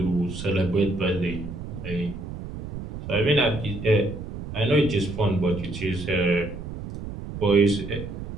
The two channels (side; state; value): right; noise; rumble, 9 dB below the sound